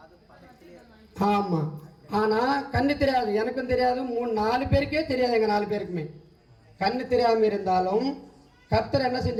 ஆமா. ஆனா கண்ணு தெரியாது, எனக்கும் தெரியாது, 3-4 பேருக்கே தெரியாது. எங்க 4 பேருக்குமே கண்ணு தெரியாம இருந்தாலும் கர்த்தர் என்ன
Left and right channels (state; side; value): identical; both; correlation 1.00